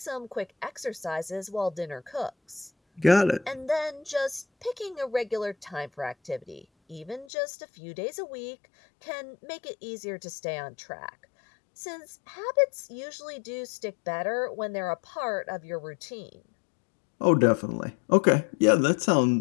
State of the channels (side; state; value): right; drops out; at 7.2 s